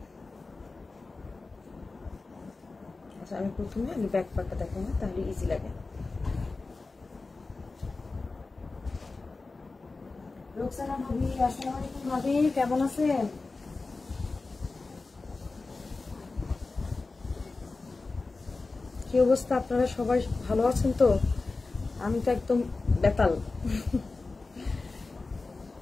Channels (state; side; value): quieter; right; 3.7 dB